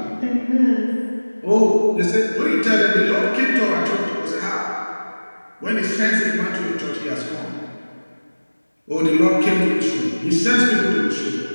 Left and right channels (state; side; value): inverted; both; correlation -1.00